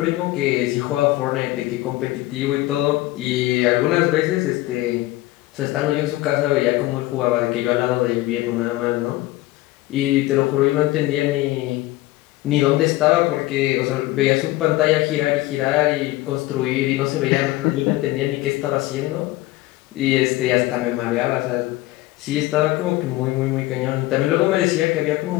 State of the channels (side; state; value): right; quieter; 17.9 dB